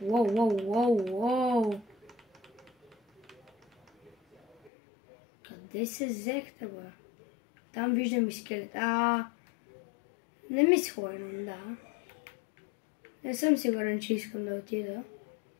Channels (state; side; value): drops out; right; at 4.7 s